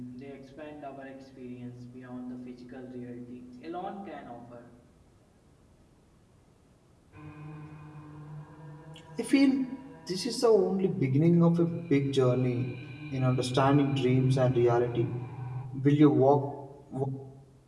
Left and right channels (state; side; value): identical; both; correlation 1.00